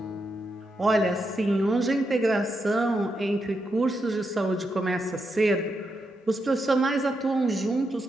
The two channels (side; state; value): both; normal; correlation 0.84